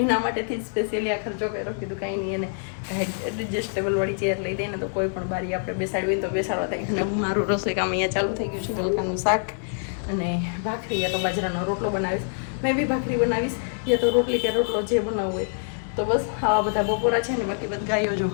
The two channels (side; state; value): right; silent; 61 dB below the other